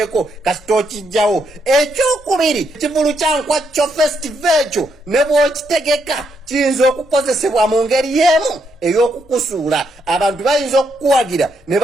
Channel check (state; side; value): normal; both; correlation 0.77